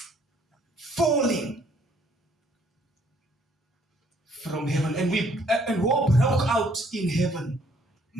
falling from heaven, and war broke out in heaven.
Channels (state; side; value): normal; both; correlation 0.64